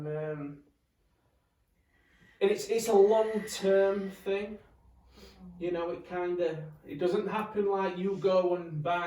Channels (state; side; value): identical; both; correlation 1.00